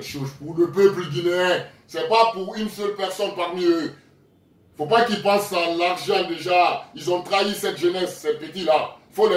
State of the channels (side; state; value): both; identical; correlation 1.00